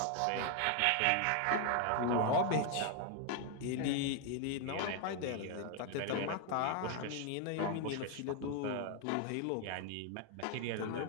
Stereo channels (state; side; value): different; both; correlation 0.01